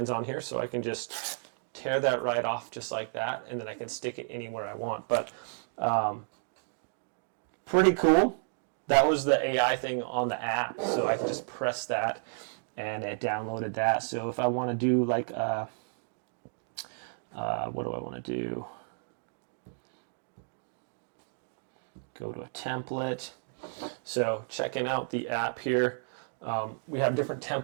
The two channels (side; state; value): left; silent; digital silence